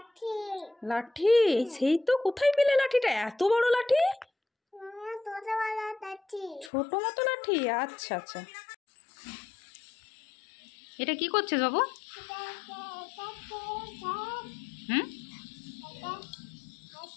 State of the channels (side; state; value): right; drops out; at 6.7 s